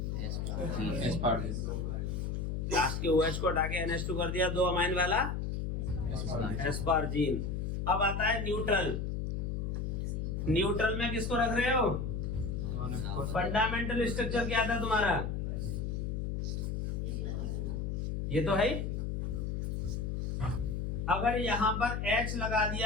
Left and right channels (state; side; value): noise; left; hum, 1 dB below the sound